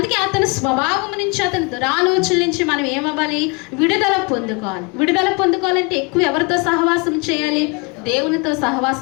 అతని స్వభావం నుంచి, అతని దురాలోచన నుంచి మనం ఏమవ్వాలి? విడుదల పొందుకోవాలి. విడుదల పొందుకోవాలంటే ఎక్కువ ఎవరితో సహవాసం చేయాలి? దేవునితో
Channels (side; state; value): right; quieter; 30.1 dB